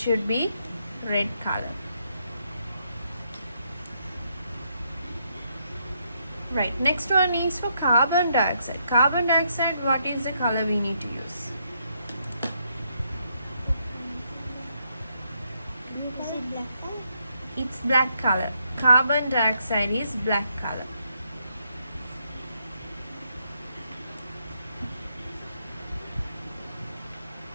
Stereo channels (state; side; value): inverted; both; correlation -0.76